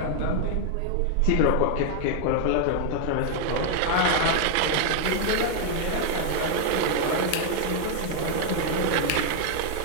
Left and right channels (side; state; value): both; different; correlation 0.00